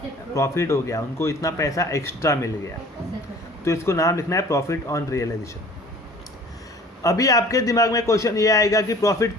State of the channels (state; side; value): normal; both; correlation 0.48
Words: प्रॉफिट हो गया। उनको इतना पैसा एक्स्ट्रा मिल गया। तो इसको नाम लिखना है प्रॉफिट ऑन रियलाइजेशन। अभी आपके दिमाग में क्वेश्चन ये आएगा कि प्रॉफिट